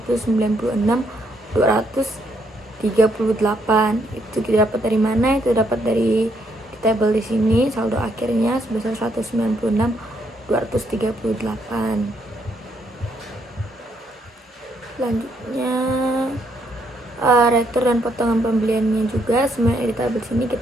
Itu kita dapat dari mana? Itu dapat dari di tabel di sini, saldo akhirnya sebesar 196.238. Selanjutnya retur dan potongan pembeliannya juga semuanya di tabel sini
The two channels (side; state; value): both; normal; correlation 0.73